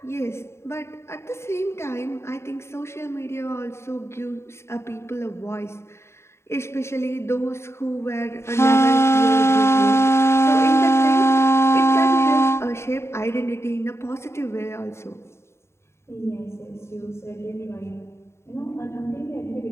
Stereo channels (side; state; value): right; late; 0.13 ms